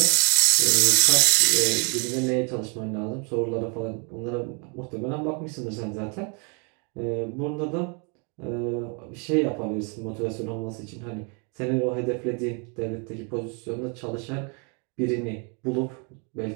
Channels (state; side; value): quieter; left; 35.9 dB